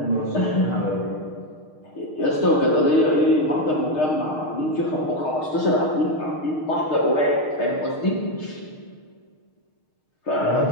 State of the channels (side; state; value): right; late; 6.5 ms